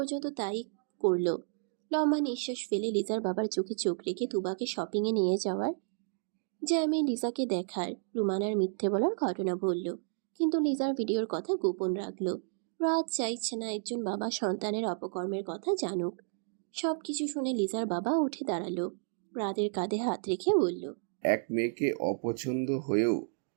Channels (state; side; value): silent; left; digital silence